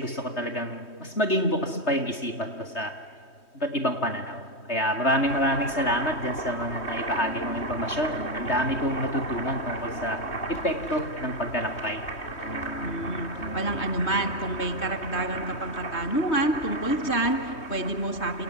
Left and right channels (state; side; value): late; right; 3.2 ms